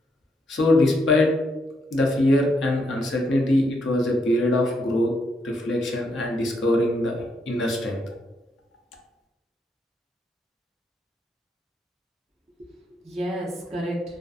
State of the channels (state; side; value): normal; both; correlation 0.77